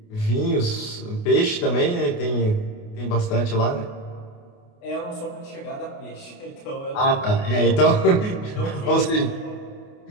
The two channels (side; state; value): right; late; 28 ms